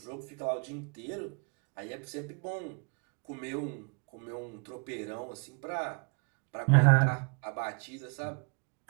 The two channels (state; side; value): quieter; left; 35.6 dB